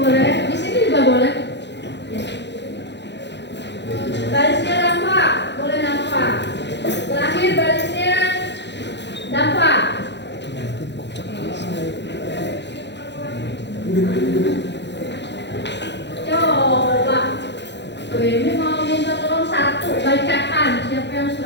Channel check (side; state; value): right; late; 0.51 ms